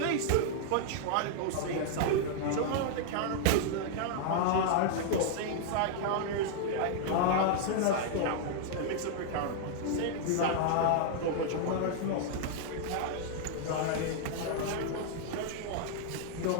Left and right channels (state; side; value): different; both; correlation -0.01